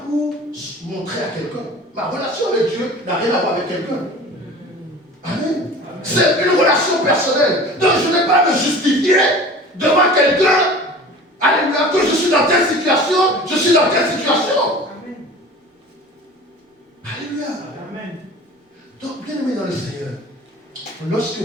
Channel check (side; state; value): both; normal; correlation 0.41